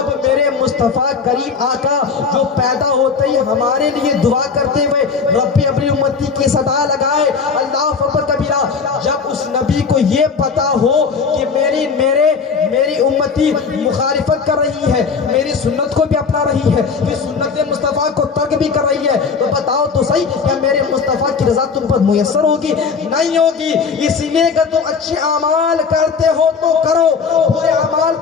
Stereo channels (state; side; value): quieter; right; 5.5 dB